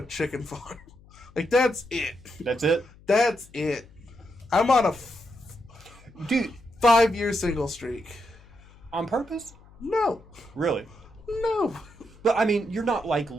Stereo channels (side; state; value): left; noise; hum, 24 dB below the sound